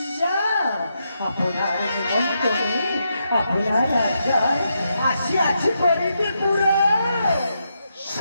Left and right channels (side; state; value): both; inverted; correlation -0.82